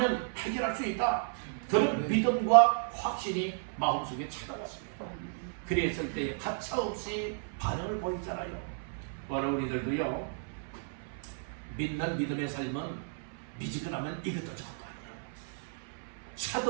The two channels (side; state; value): left; silent; 56 dB below the other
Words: 해결할 수 있다. 그런 믿음과 확신이 마음속에 찾아왔습니다. 그랬을 때 가차없이 반응을 보이잖아요. 오늘 우리들도요 믿는 믿음의 삶은 미지근하면 이것도 저것도 아니에요.